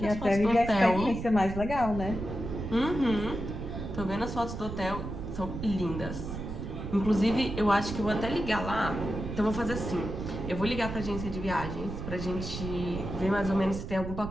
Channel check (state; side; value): noise; right; rumble, 7 dB below the sound